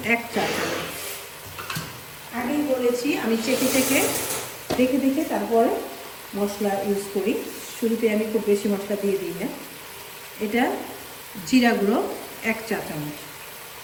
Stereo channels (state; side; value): identical; both; correlation 1.00